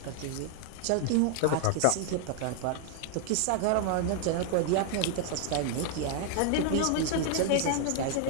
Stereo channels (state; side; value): different; both; correlation 0.00